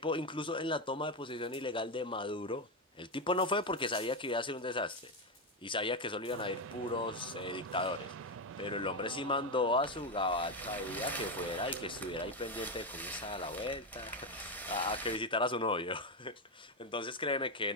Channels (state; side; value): normal; both; correlation 0.10